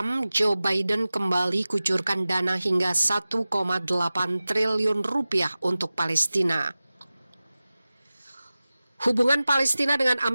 Joe Biden kembali kucurkan dana hingga 1,8 triliun rupiah untuk Palestina. Hubungan Palestina dengan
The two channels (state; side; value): inverted; both; correlation -0.96